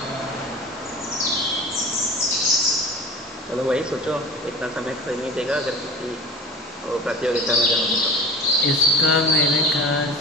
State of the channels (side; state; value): both; normal; correlation 0.36